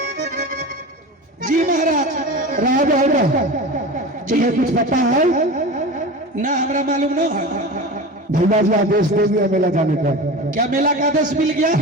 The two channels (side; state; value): both; normal; correlation 0.30